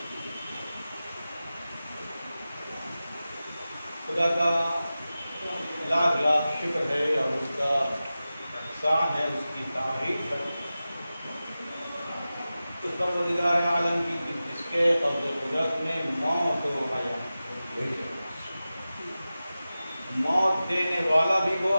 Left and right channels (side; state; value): both; inverted; correlation -0.95